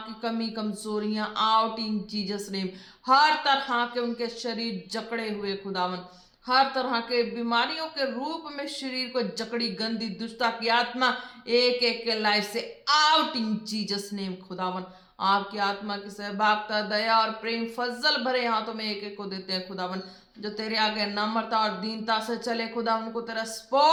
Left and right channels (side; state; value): both; identical; correlation 1.00